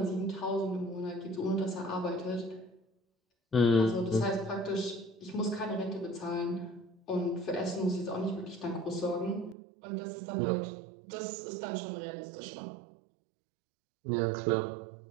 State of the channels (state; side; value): drops out; left; at 9.6 s